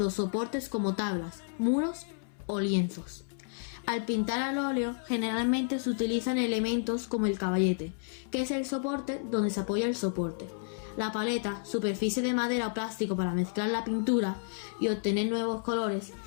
soportes como tablas, muros o lienzos. Al pintar al óleo, generalmente se utilizan elementos como el caballete, que es el soporte donde se apoya el soporte. La paleta, superficie de madera o plástico para mezclar la pintura y obtener nuevos colores.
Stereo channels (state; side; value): silent; right; 57 dB below the other